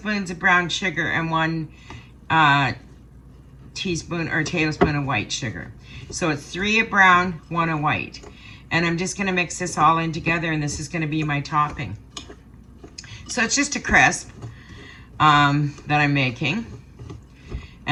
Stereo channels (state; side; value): identical; both; correlation 1.00